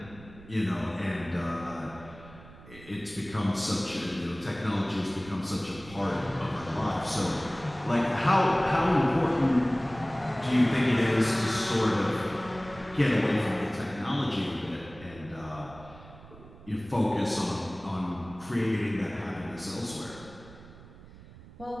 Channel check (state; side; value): noise; right; rumble, 19 dB below the sound